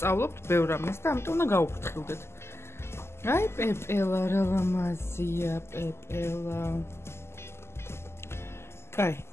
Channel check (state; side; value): late; right; 0.12 ms